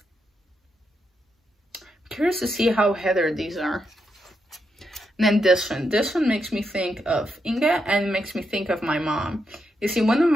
I'm curious to see how heather these are. And then this one makes me think of Inge and makes me think of my mom. You see, one of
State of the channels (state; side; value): normal; both; correlation 0.82